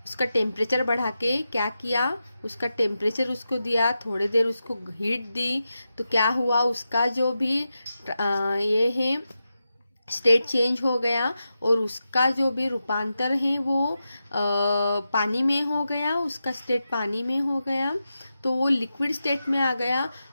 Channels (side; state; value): both; inverted; correlation -0.90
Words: उसका टेम्परेचर बढ़ा के क्या किया? उसका टेम्परेचर उसको दिया, थोड़ी देर उसको हीट दी, तो क्या हुआ? उसका जो भी ये है स्टेट चेंज हो गया और उसका जो भी रूपांतर है वो पानी में हो गया, उसका स्टेट पानी में हो गया, तो वो लिक्विड स्टेट में आ गया।